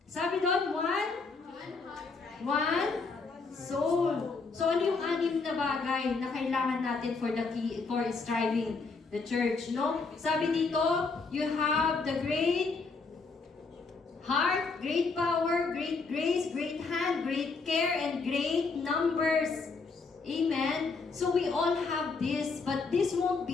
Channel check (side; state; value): right; quieter; 4.3 dB